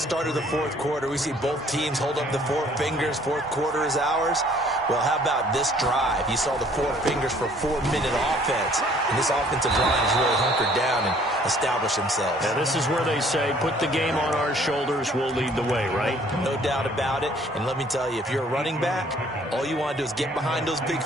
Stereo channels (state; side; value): normal; both; correlation 0.58